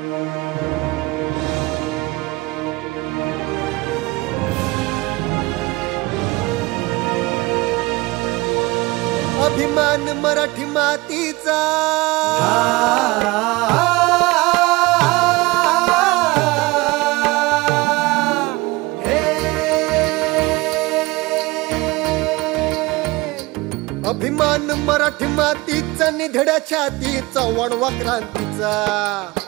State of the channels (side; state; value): left; quieter; 22.4 dB